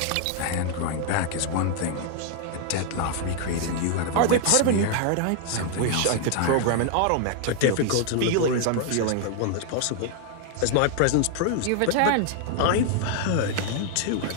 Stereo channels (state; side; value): different; both; correlation 0.00